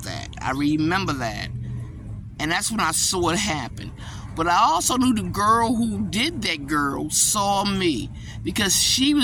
that. I remember that. And that's when I saw it happen. But I also knew the girl who did that girl saw me, because she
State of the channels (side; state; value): both; identical; correlation 1.00